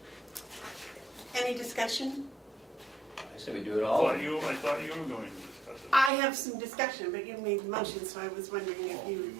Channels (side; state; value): left; drops out; at 6.1 s